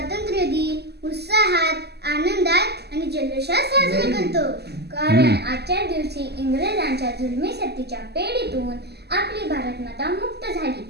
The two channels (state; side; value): late; left; 0.48 ms